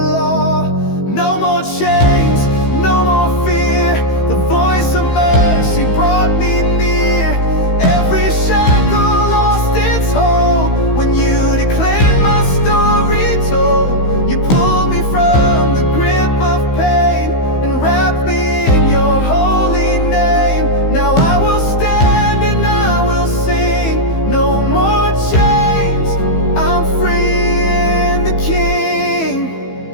No more chains, no more fear. The voice of mercy brought me near. Every shackle lost its hold when you declared my story told. You pulled me from the grip of pain and wrapped me in your holy name. Now I will stand and I will sing. No more chains, I'm free in the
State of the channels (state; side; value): late; right; 15 ms